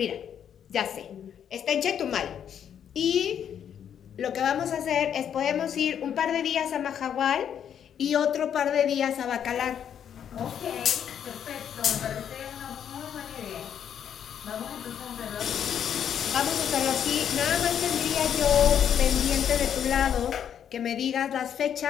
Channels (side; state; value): right; quieter; 8.9 dB